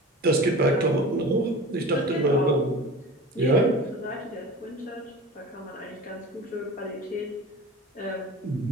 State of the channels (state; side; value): normal; both; correlation 0.36